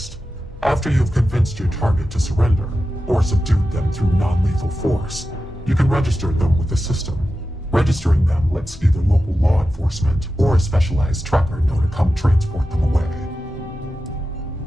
After you've convinced your target to surrender, or subdued them through non-lethal force, you can register them with the system. Registering them lets either local law enforcement or a specialized tracker know to come transport them away.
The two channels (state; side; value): normal; both; correlation 0.92